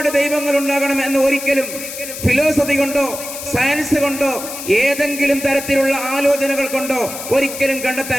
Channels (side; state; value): left; noise; hiss, 9 dB below the sound